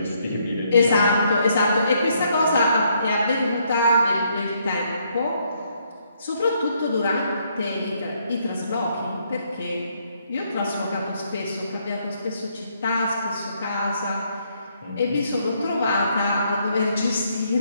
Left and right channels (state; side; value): inverted; both; correlation -0.72